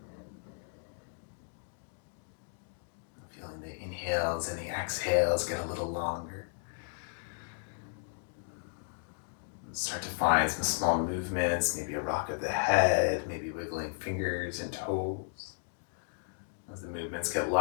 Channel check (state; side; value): silent; right; digital silence